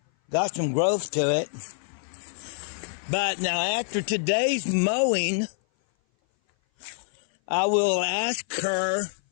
got some growth to it. But now after today's mowing, I will ask her,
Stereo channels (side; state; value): right; silent; 57 dB below the other